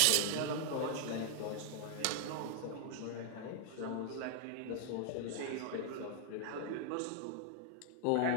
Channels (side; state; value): both; different; correlation -0.01